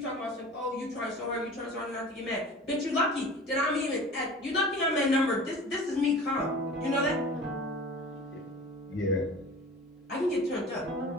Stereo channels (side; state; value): both; normal; correlation 0.40